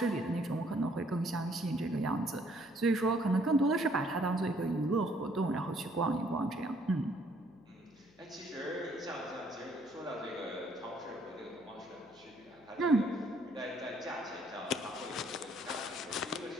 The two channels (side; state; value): left; noise; hum, 28 dB below the sound